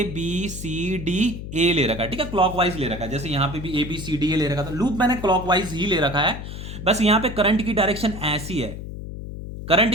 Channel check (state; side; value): noise; left; hum, 9 dB below the sound